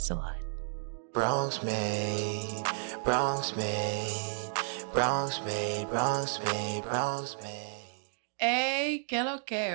a lot. Bronx made, Bronx made, Bronx made, Bronx made, Bronx made. Hey, que lo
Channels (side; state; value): left; silent; digital silence